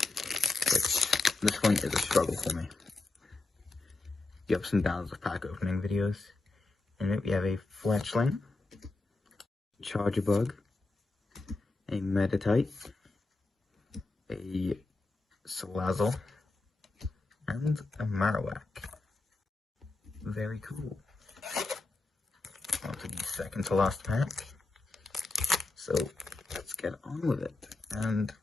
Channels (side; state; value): right; quieter; 3.3 dB